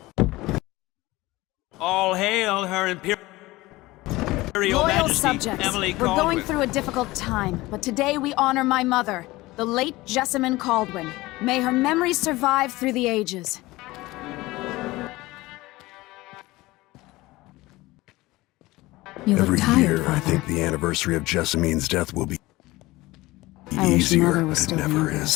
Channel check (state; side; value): quieter; right; 19.7 dB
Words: All hail her Imperial Loyal Majesty, subjects, Emily we're Kaldwin. going through a difficult time, but today we honor my mother, the late Jessamine Kaldwin. May her memory survive through the ages. You look Every tired, year, Father. I think the anniversary of Jessamine's death will be I wish easier, Mother was but it still never in is.